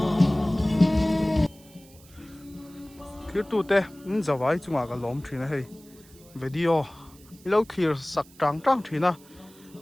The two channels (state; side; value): noise; right; hiss, 25 dB below the sound